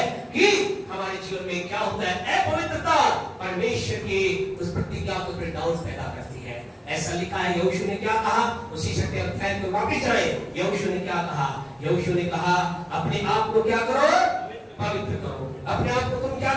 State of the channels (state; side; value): identical; both; correlation 1.00